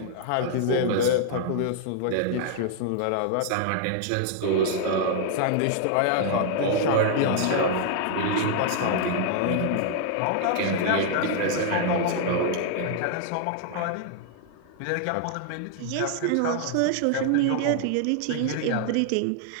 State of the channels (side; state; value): both; different; correlation -0.01